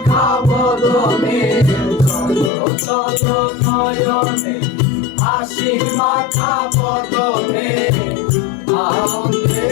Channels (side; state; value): right; drops out; at 2.5 s